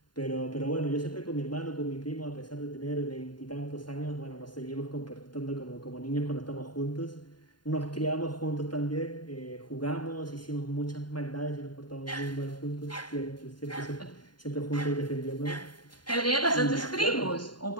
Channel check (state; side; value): late; right; 0.71 ms